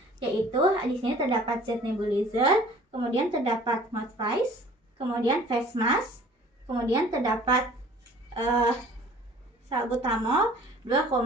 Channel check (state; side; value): normal; both; correlation 0.50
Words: yaitu di sini terdapat zat nebulizer, kemudian terdapat mouth face, kemudian face mask, kemudian terdapat salbutamol 2,5